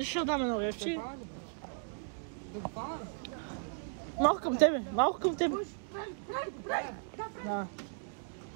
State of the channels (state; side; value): silent; left; digital silence